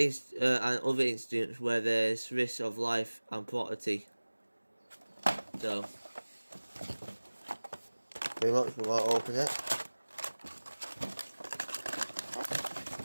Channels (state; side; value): inverted; both; correlation -1.00